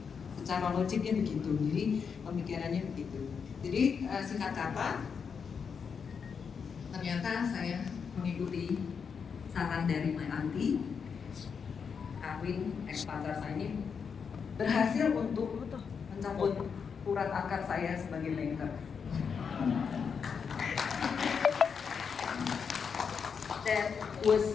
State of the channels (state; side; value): quieter; right; 6.3 dB